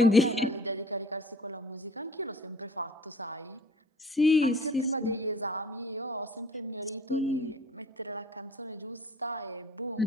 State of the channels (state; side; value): normal; both; correlation 0.50